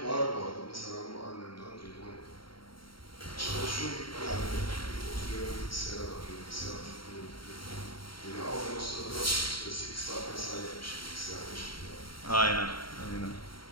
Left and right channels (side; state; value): right; late; 0.73 ms